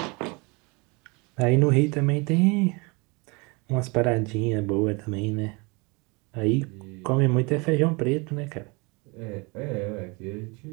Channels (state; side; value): quieter; left; 28.7 dB